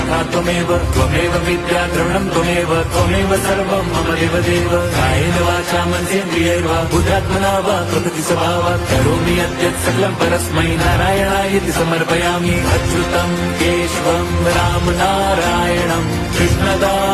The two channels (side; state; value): both; identical; correlation 1.00